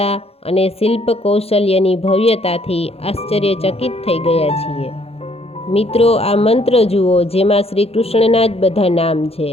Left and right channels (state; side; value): late; right; 0.29 ms